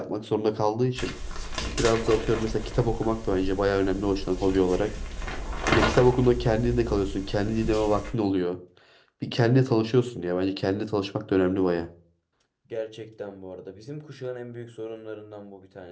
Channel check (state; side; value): identical; both; correlation 1.00